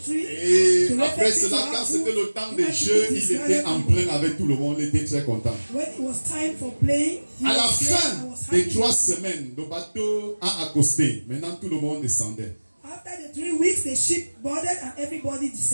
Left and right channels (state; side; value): inverted; both; correlation -1.00